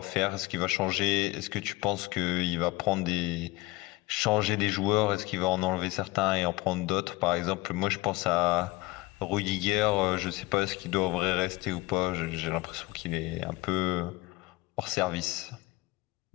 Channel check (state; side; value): quieter; right; 20.7 dB